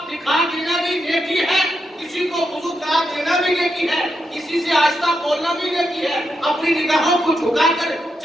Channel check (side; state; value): both; normal; correlation 0.84